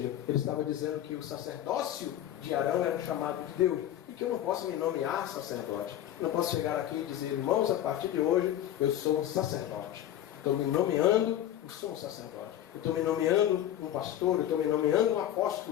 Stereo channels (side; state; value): right; quieter; 11.8 dB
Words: ele estava dizendo que o sacerdócio de Arão era o chamado de Deus, e que eu não posso me nomear sacerdote. Eu não posso chegar aqui e dizer: irmãos, a partir de hoje eu sou um sacerdote. Estou me nomeando, eu sou um sacerdote. Eu estou me nomeando um pastor, eu estou me nomeando um